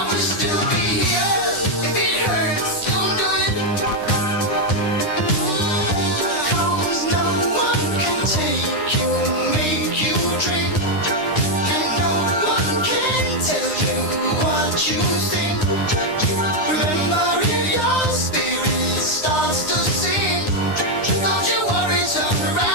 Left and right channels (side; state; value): right; late; 9.8 ms